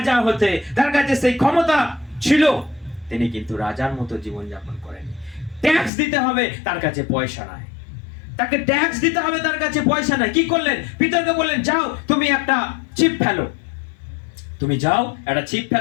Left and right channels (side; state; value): right; drops out; at 5.9 s